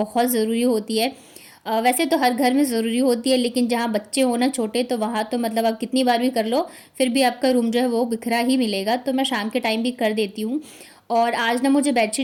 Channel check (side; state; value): both; identical; correlation 1.00